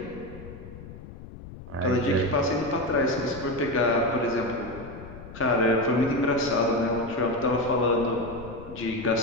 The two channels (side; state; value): left; noise; rumble, 15 dB below the sound